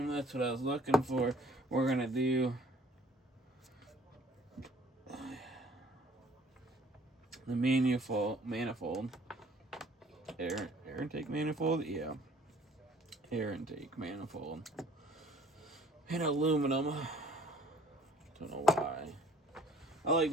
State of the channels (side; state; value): both; normal; correlation 0.56